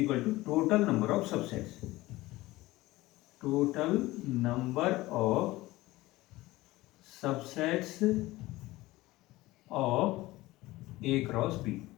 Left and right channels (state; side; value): quieter; right; 18.7 dB